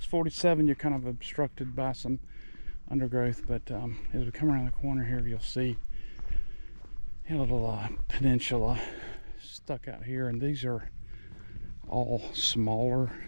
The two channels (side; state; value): both; inverted; correlation -1.00